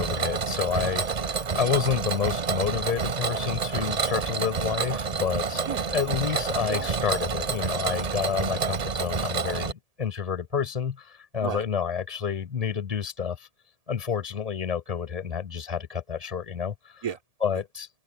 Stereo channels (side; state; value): left; late; 1.7 ms